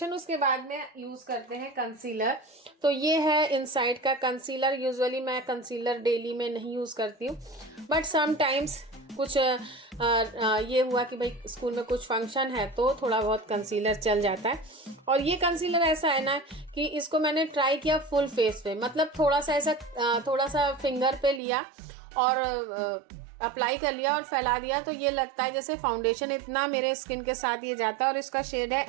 उसके बाद में यूज़ करते हैं कंसीलर। तो ये है इनसाइट का कंसीलर। यूजुअली मैं कंसीलर डेली में नहीं यूज़ करती हूँ, बट समटाइम्स कुछ ये हुआ कि भाई स्कूल में कुछ फंक्शन है तो थोड़ा बहुत कंसीलर चल जाता है। और ये कंसीलर ऐसा है ना कि इसको मैंने ट्राई किया फुल फेस पे, मतलब थोड़ा सा फिंगर पे लिया और अप्लाई कर लिया और फैला दिया, तो ये लगता है जैसे फाउंडेशन, इतना मेरे स्किन के साथ ये जाता है। और इसका शेड है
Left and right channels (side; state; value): left; drops out; at 21.4 s